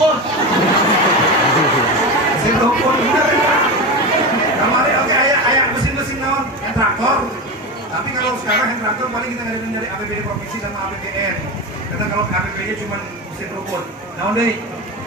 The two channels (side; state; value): both; normal; correlation 0.21